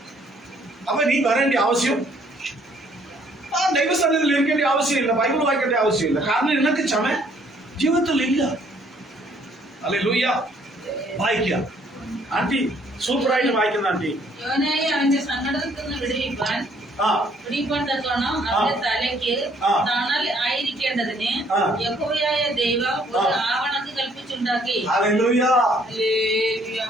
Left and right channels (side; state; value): both; normal; correlation 0.64